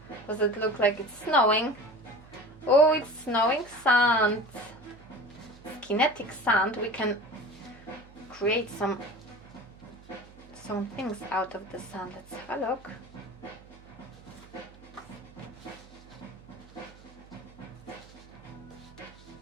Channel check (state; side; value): noise; right; hum, 22 dB below the sound